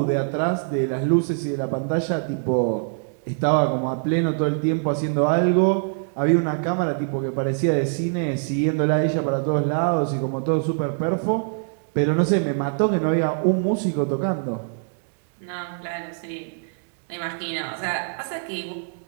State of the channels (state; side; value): silent; left; digital silence